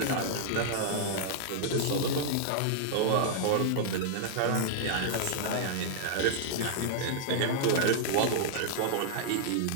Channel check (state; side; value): different; both; correlation -0.01